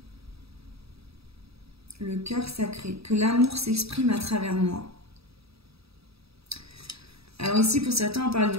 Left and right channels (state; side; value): late; left; 0.77 ms